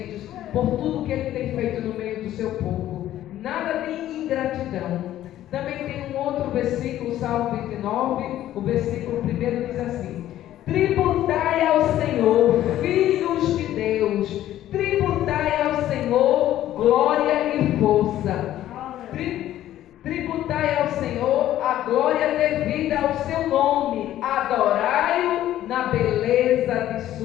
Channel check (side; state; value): right; quieter; 13.0 dB